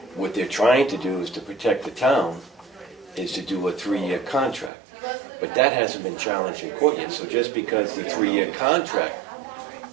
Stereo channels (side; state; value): left; drops out; at 4.7 s